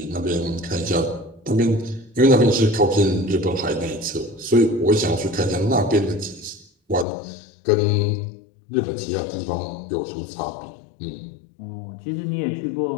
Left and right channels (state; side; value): drops out; right; at 7.1 s